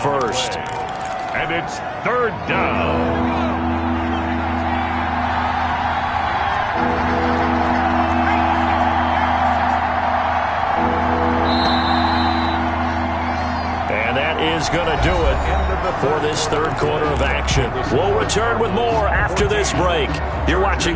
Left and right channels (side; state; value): both; identical; correlation 1.00